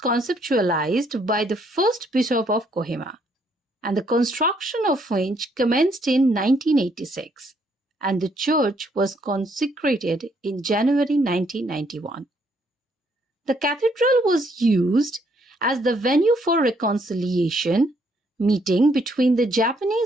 by the first bishop of Kohima, and the construction of which commenced in 1986, and the church was consecrated in January 1991. The cathedral was used as the venue for reconciliation meeting between the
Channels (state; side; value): normal; both; correlation 0.70